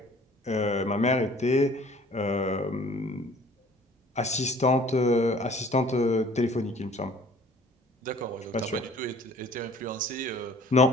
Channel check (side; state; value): both; normal; correlation 0.51